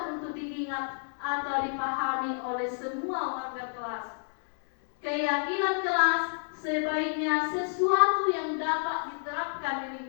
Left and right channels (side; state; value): right; silent; 58 dB below the other